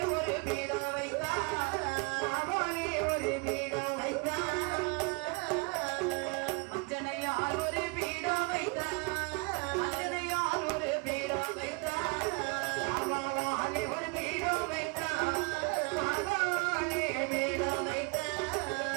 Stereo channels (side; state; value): left; quieter; 30.7 dB